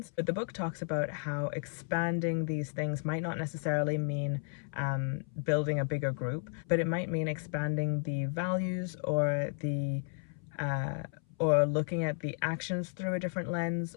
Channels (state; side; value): silent; right; 56 dB below the other